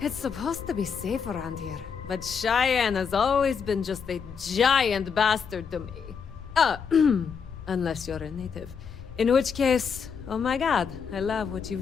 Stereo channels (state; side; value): quieter; right; 6.3 dB